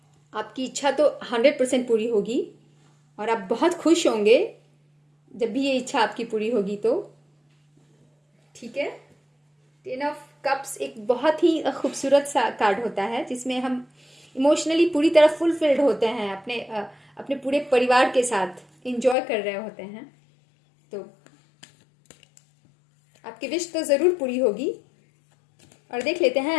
आपकी इच्छा तो 100% पूरी होगी और आप बहुत खुश होंगे जब भी ये इच्छा आपकी पूरी होगी तो। ठीक है, 10 ऑफ कप्स एक बहुत ही खूबसूरत सा कार्ड होता है जिसमें हम इमोशनली पूरी तरह फुलफिल्ड होते हैं, अपने पूरे परिवार के साथ इंजॉय कर रहे होते हैं। तो आपकी विश तो ज़रूर पूरी होगी। और देख लेते हैं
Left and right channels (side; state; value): right; drops out; at 19.2 s